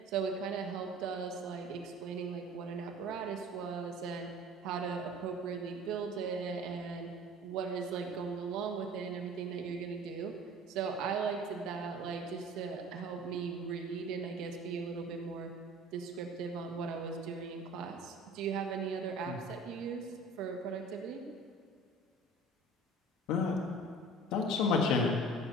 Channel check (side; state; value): both; normal; correlation 0.43